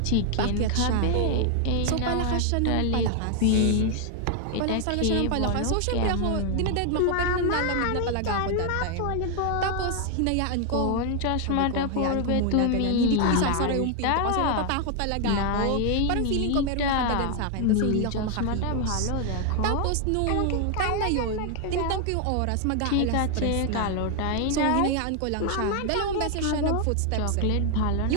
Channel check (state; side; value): different; both; correlation 0.00